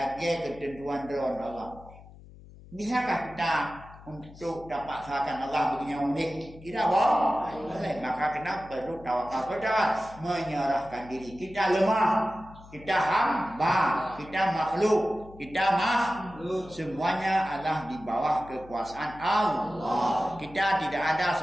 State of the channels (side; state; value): left; noise; hum, 20 dB below the sound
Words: ketentuan dari Allah. Bisakah kita untuk dapat sahakan Allah begini unik? Tidak boleh. Maka kita perlu tawakal kepada menyerahkan diri. Kita lemah, kita hamba, kita makhluk, kita semuanya adalah di bawah kekuasaan Allah. Kita tidak ada